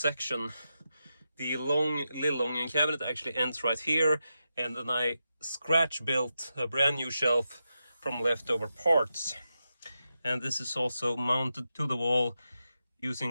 The Lillången cabinet actually ends right here, and then I scratch built a brand new shelf from leftover parts. And this is also mounted to the wall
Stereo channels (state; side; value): inverted; both; correlation -0.88